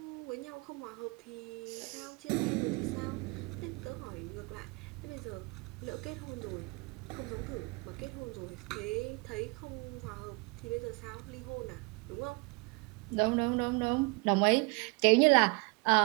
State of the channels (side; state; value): left; quieter; 28.9 dB